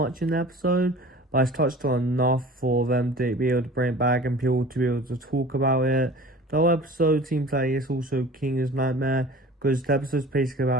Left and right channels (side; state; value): both; normal; correlation 0.43